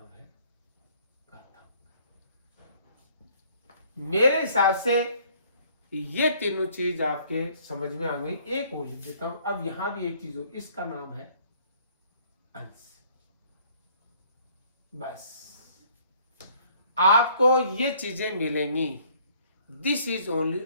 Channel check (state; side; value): inverted; both; correlation -0.60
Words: है घातांक। मेरे हिसाब से ये तीनों चीज आपके समझ में आ गई। एक वो लिख देता हूं। अब यहां भी एक चीज हो, इसका नाम है अंश। बस आपको ये चीजें मिलेंगी। दिस इज ओनली